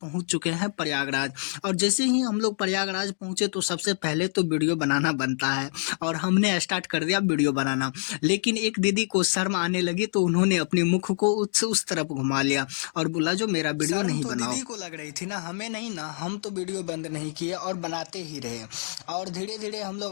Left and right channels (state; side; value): silent; right; digital silence